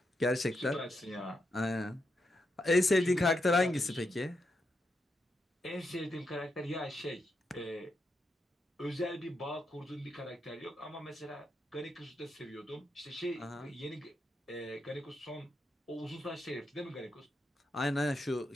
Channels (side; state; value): both; normal; correlation 0.83